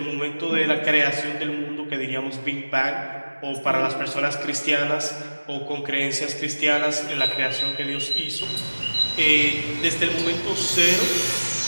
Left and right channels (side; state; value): both; inverted; correlation -1.00